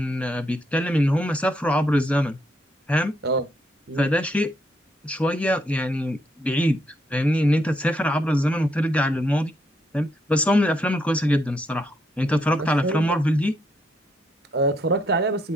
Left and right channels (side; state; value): both; normal; correlation 0.75